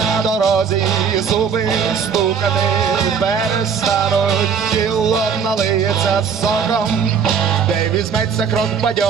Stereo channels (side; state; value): left; quieter; 6.7 dB